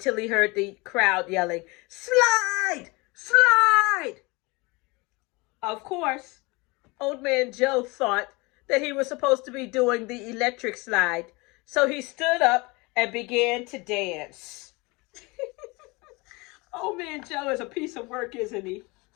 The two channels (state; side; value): quieter; right; 25.5 dB